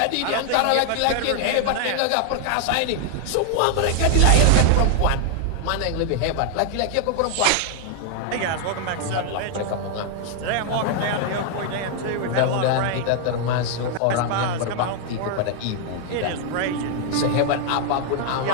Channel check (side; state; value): both; different; correlation 0.00